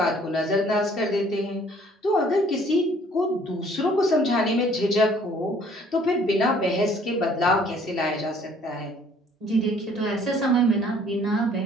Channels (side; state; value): both; normal; correlation 0.58